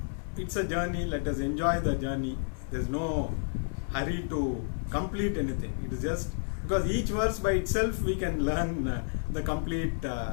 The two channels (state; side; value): silent; right; 57 dB below the other